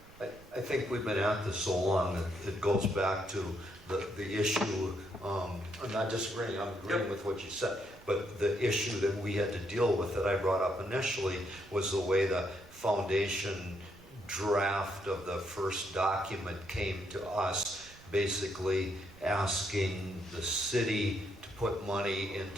I think we've been at this so long that it goes back to the issue. I'm not disagreeing, I'm agreeing with what you said, but the issue that we had to deal with that I brought up initially was the way the foundation draft of the first document came to us, basically asking the city to put money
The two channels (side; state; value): right; noise; rumble, 23 dB below the sound